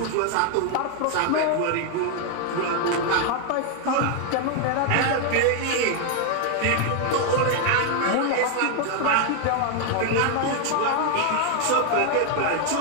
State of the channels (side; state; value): both; different; correlation 0.00